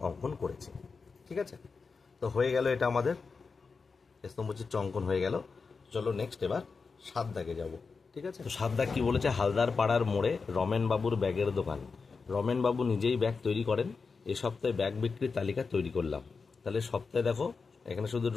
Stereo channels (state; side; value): quieter; right; 4.8 dB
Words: অঙ্কন করেছি। ঠিক আছে, তো হয়ে গেল, এটা আমাদের স্তম্ভচিত্র অঙ্কন হয়ে গেল। চলো নেক্সট এবার 7 দাগে যাব। ঠিক আছে, তো 7 দাগ কি বলেছে? হালদার পাড়ার মোড়ে রমেন বাবুর ব্যাগের দোকান। রমেন বাবু নিজেই ব্যাগ তৈরি করেন। এ সপ্তাহে ব্যাগ বিক্রির তালিকা তৈরি করলাম। তাহলে সপ্তাহে দেখো এখানে শুধু